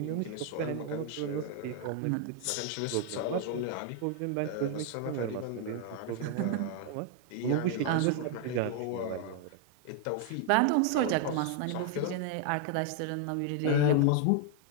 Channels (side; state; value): both; different; correlation 0.00